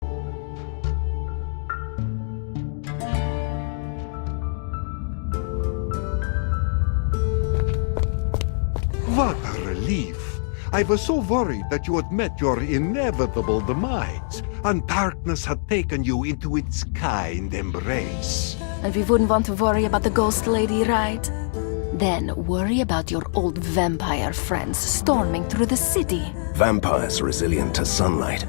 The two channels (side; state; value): right; silent; digital silence